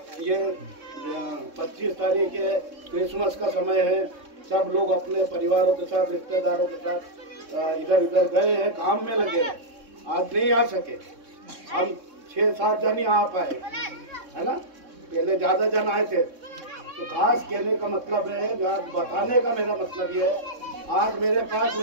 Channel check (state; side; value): late; left; 3.6 ms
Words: ये 25 तारीख है, क्रिसमस का समय है, सब लोग अपने परिवारों के साथ, रिश्तेदारों के साथ इधर उधर गए हैं, काम में लगे हैं, आज नहीं आ सके। हम 6-7 जन ही आ पाए, है ना। पहले ज्यादा जन आए थे। तो खास कहने का मतलब है, बताने का मेरा मतलब ये है, आज मेरे पास